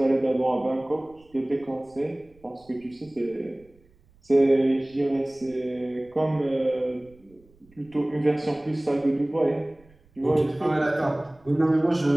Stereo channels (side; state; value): right; noise; rumble, 30 dB below the sound